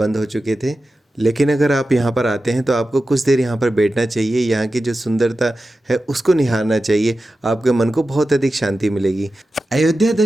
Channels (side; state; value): both; normal; correlation 0.93